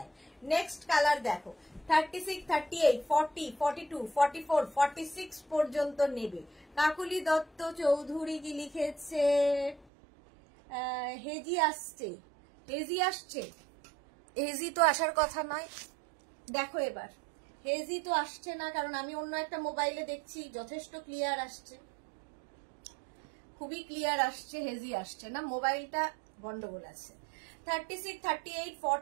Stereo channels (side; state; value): left; drops out; at 9.9 s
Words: নেক্সট কালার দেখো, 36, 38, 40, 42, 44, 46 পর্যন্ত নেবে। কাকুলি দত্ত চৌধুরী কি লিখেছে? হেজি আসছে, হেজি আসছে। হেজি তো আসার কথা নয়, দেখো এবার হেজি তো আসছে না, কারণ আমি অন্য একটা মোবাইলে দেখছি যথেষ্ট ক্লিয়ার আসছে, খুবই ক্লিয়ার আসছে, হেজি আসছে না, মোবাইলটা গন্ডগোল আছে। 36, 38,